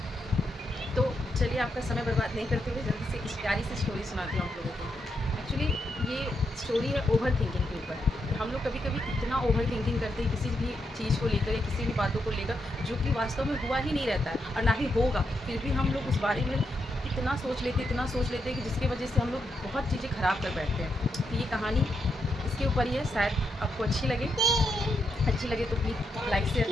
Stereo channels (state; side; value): normal; both; correlation 0.82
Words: तो चलिए आपका समय बर्बाद नहीं करते हुए जल्दी से इस प्यारी सी स्टोरी सुनाती हूँ आप लोगों को। एक्चुअली ये स्टोरी है ओवर थिंकिंग के ऊपर। हम लोग कभी कभी इतना ओवर थिंकिंग करते हैं किसी भी चीज़ को लेकर या किसी भी बातों को लेकर, जो कि वास्तव में हुआ ही नहीं रहता है और ना ही होगा। फिर भी हम लोग उस बारे में इतना सोच लेते हैं कि जिसकी वजह से हम लोग बहुत चीज़ें ख़राब कर बैठते हैं। तो ये कहानी इसके ऊपर ही है। शायद आपको अच्छी लगे तो प्लीज़ लाइक